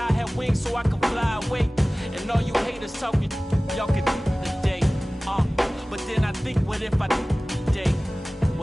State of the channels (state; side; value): normal; both; correlation 0.98